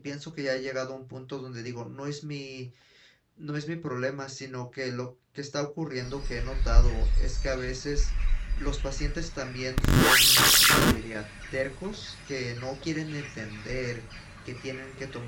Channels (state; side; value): identical; both; correlation 1.00